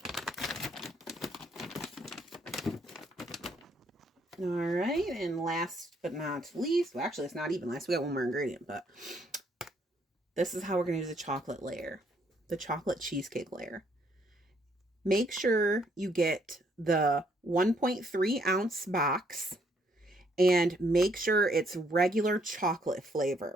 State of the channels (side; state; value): both; normal; correlation 0.69